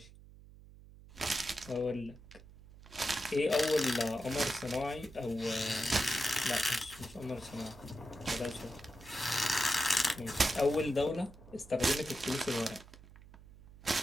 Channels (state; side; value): noise; right; hum, 20 dB below the sound